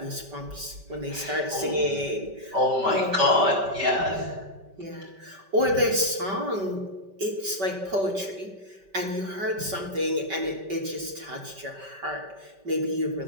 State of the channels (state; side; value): late; left; 5.2 ms